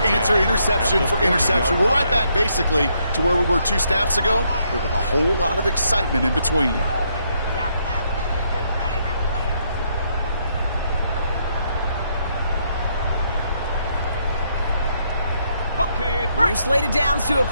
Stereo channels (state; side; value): inverted; both; correlation -0.74